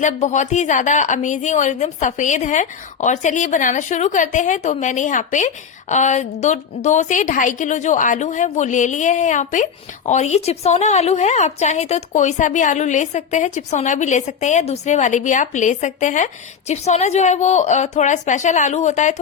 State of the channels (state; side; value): quieter; right; 6.9 dB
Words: बहुत ही ज्यादा अमेजिंग और एकदम सफेद है। और चलिए बनाना शुरू करते हैं। तो मैंने यहाँ पे 2 से 2.5 किलो जो आलू है वो ले लिए हैं यहाँ पे। और ये चिप्सोना आलू है, आप चाहे तो कोई सा भी आलू ले सकते हैं, चिप्सोना भी ले सकते हैं या दूसरे वाले भी आप ले सकते हैं। चिप्सोना जो है वो थोड़ा स्पेशल आलू होता है,